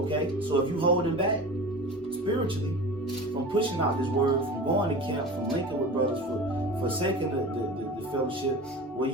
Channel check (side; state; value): both; normal; correlation 0.34